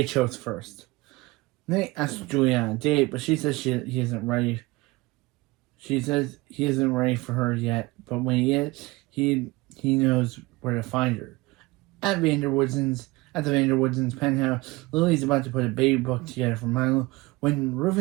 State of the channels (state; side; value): quieter; left; 22.1 dB